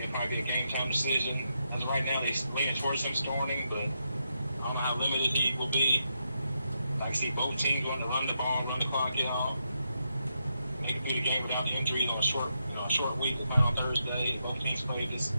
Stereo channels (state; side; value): inverted; both; correlation -0.83